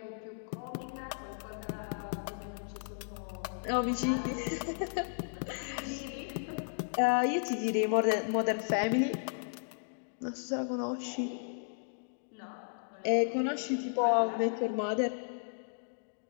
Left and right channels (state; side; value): silent; right; digital silence